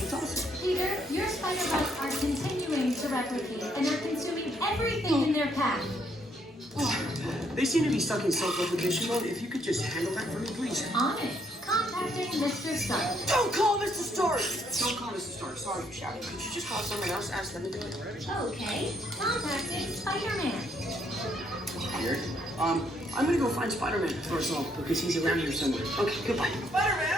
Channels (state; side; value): normal; both; correlation 0.71